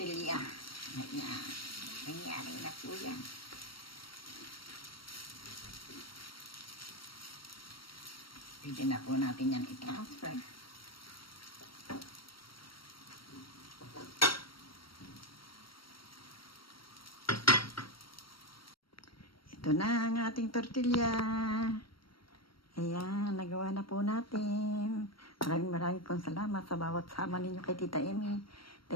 Ayan. Nangyari na po yan. Pwede na po natin yan i-transfer. Ito na ang ating tortilla. Ayan, nagawa na po natin. Maraming pong salamat sa bawat sama ninyo kay Tita Emmy.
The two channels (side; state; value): right; late; 0.74 ms